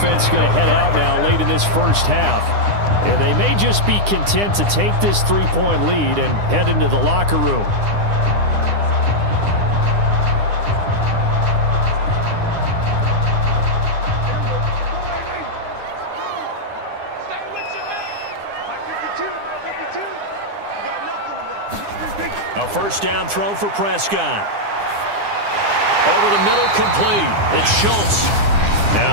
going to head out now late in this first half. And they may just be content to take this 3-point lead and head into the locker room. A first down throw for Prescott. Over the middle, complete. It's Schultz.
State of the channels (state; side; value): late; left; 9.9 ms